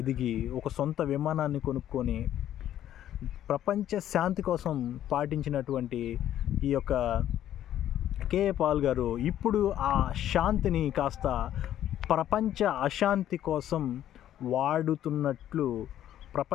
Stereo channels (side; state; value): right; quieter; 11.6 dB